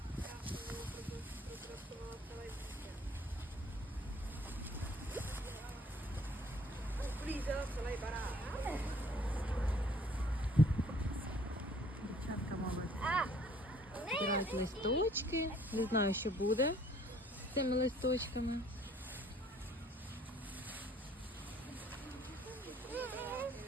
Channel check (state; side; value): normal; both; correlation 0.58